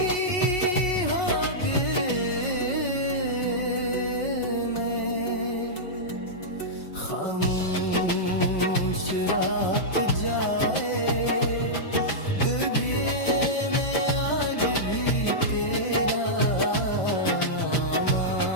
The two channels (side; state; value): right; late; 5.4 ms